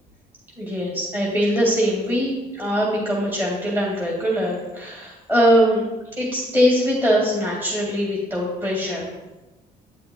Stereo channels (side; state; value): both; normal; correlation 0.69